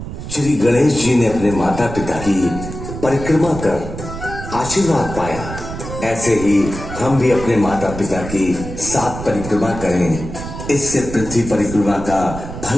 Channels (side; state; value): right; noise; rumble, 9 dB below the sound